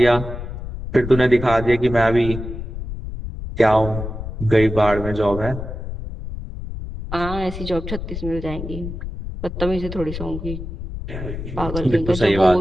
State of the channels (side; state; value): left; noise; rumble, 8 dB below the sound